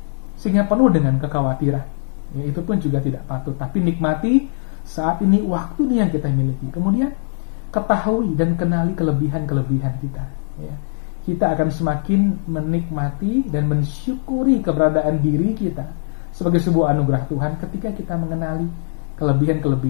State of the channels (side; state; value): right; silent; digital silence